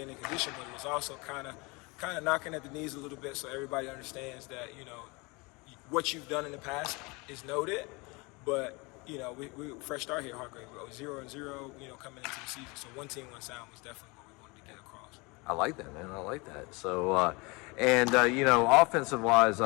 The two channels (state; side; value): quieter; right; 27.0 dB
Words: in condition, but it was also kind of knocking at the knees a little bit so everybody understands that, what you've done in the past is noted, but we fresh start here, Hargrave. We go 0-0, coming into the season. So one team, one sound was definitely what we wanted to get across. I like that, man. I like that. So, offensive wise,